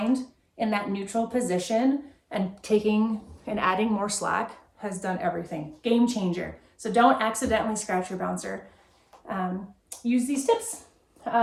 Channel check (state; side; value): identical; both; correlation 1.00